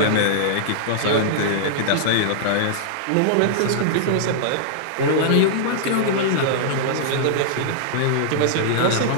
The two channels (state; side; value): different; both; correlation -0.01